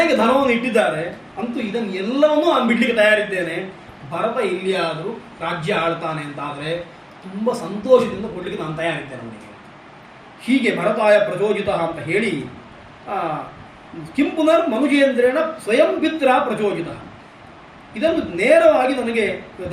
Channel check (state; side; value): identical; both; correlation 1.00